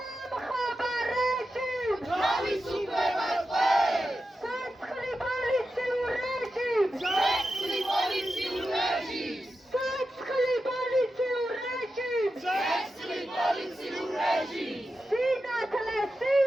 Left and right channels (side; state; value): both; normal; correlation 0.90